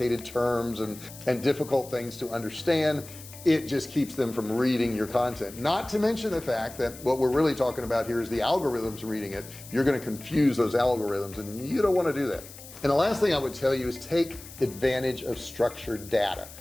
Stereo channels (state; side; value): noise; left; hiss, 17 dB below the sound